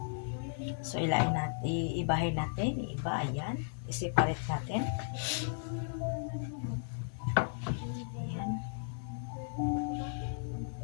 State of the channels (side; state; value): right; silent; 54 dB below the other